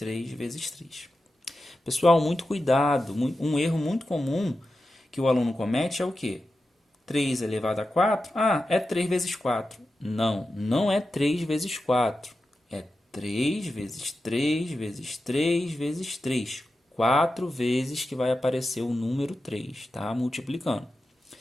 vezes 3. Pessoal, muito cuidado. Um erro muito comum que o aluno comete é o quê? 3 elevado a 4? Ah, é 3 vezes 4. Não, não é 3 vezes 4. É 3 vezes 3 vezes 3 vezes 3. 4 vezes que vai aparecer o número 3, tá? Multiplicando.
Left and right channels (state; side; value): normal; both; correlation 0.91